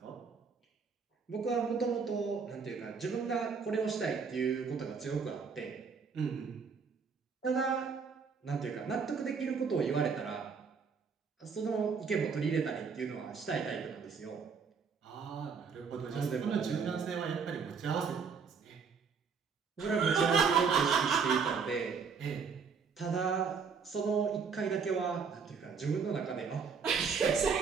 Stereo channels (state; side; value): quieter; left; 5.7 dB